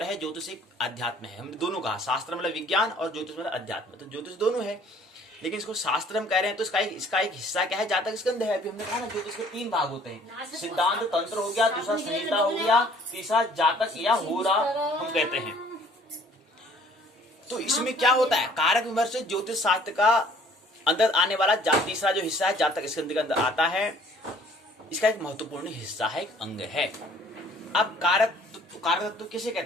है, ज्योतिष एक अध्यात्म है। हमने दोनों कहा, शास्त्र मतलब विज्ञान और ज्योतिष मतलब अध्यात्म। तो ज्योतिष दोनों है, लेकिन इसको शास्त्र हम कह रहे हैं तो इसका एक हिस्सा क्या है? जातक स्कंद है। अभी हमने कहा ना ज्योतिष के 3 भाग होते हैं, सिद्धांत तंत्र हो गया, दूसरा संहिता हो गया, तीसरा जातक या होरा हम कहते हैं। तो इसमें क्या होता है? कारक विमर्श ज्योतिष शास्त्र का अंदर आने वाला तीसरा जो हिस्सा है, जातक स्कंद के अंदर आता है। इसका एक महत्वपूर्ण हिस्सा है, एक अंग है। अब कारक तत्व किसे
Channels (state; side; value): normal; both; correlation 0.57